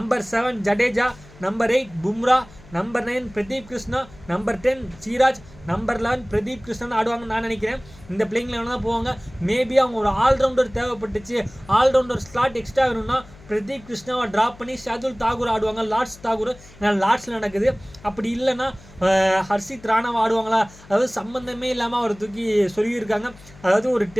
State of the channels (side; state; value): left; noise; hum, 22 dB below the sound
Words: 7 Jadeja. Number 8 Bumrah. Number 9 Pradeep Krishna. Number 10 Siraj. Number 11 Pradeep Krishnan ஆடுவாங்கன்னு நான் நினைக்கிறேன். இந்த பிளேயிங் 11 தான் போவாங்க. மேபி அவங்க ஒரு ஆல்ரவுண்டர் தேவைப்பட்டுச்சு, ஆல்ரவுண்டர் ஸ்லாட் எக்ஸ்ட்ரா வேணும்னா பிரதீப் கிருஷ்ணாவை ட்ராப் பண்ணி ஷாதுல் தாகூர் ஆடுவாங்க. லார்ட்ஸ் தாகூர் ஏன்னா லார்ட்ஸில் நடக்குது. அப்படி இல்லைன்னா ஹர்ஷித் ராணாவை ஆடுவாங்களா, அதாவது சம்மந்தமே இல்லாமல் அவர் தூக்கி சொல்லியிருக்காங்க. அதாவது ஒரு